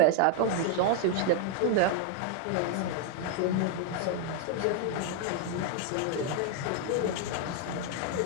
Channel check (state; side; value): different; both; correlation 0.00